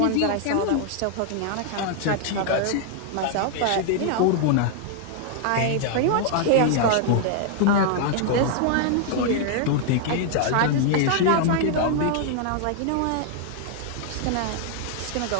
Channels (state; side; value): different; both; correlation 0.00